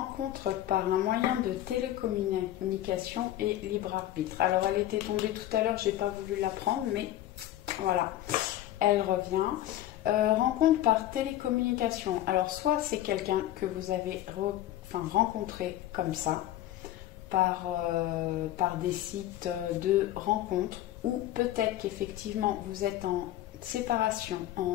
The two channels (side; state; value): right; quieter; 13.6 dB